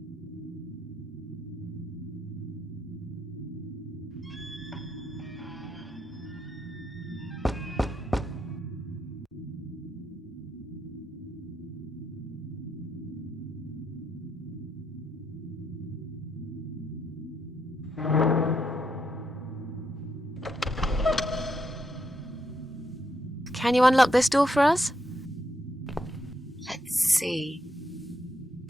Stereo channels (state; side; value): normal; both; correlation 0.79